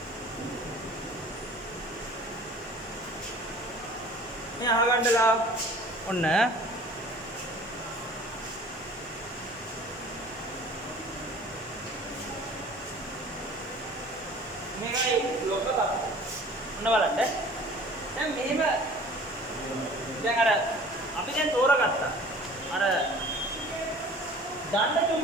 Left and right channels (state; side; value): normal; both; correlation 0.46